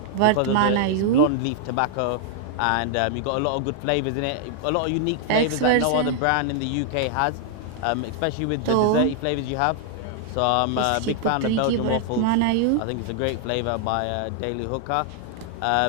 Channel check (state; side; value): different; both; correlation 0.00